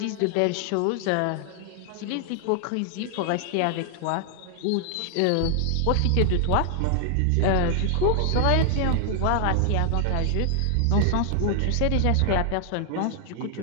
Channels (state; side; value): different; both; correlation 0.00